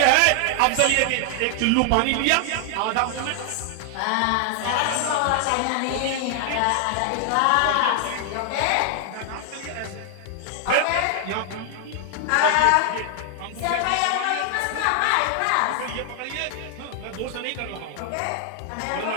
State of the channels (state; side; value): different; both; correlation 0.00